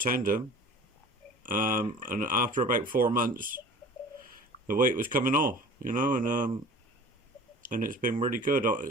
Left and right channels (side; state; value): both; normal; correlation 0.43